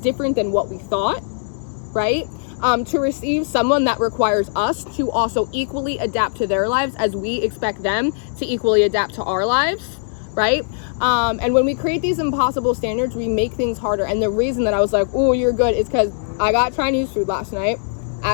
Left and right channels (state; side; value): silent; right; digital silence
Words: than what we thought, right? To receive someone that requires us to also equally adapt to their lives as we expect them to equally adapt to our lives, right? And when we create these impossible standards, we make things harder. And the reason that I was like, oh, you're good, is because I got Chinese food last night,